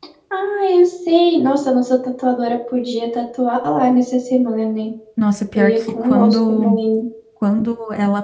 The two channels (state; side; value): identical; both; correlation 1.00